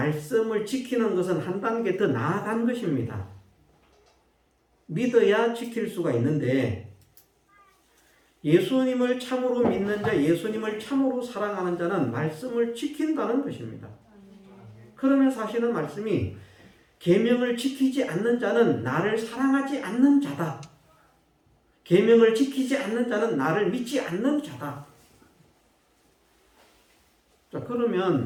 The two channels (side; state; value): both; identical; correlation 1.00